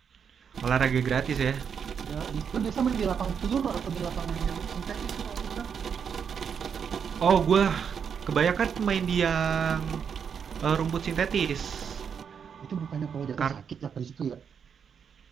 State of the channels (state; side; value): quieter; left; 7.1 dB